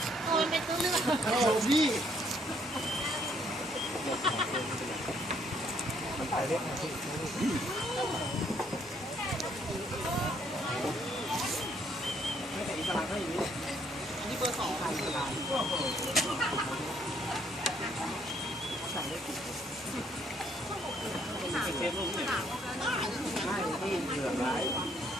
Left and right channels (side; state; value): both; normal; correlation 0.68